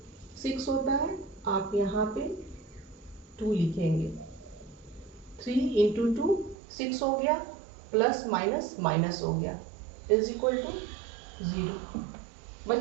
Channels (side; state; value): left; drops out; at 6.6 s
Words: 6 होता है, आप यहाँ पे 2 लिखेंगे। 3 इंटू 2 6 हो गया, प्लस माइनस माइनस हो गया, इज इक्वल टू 0।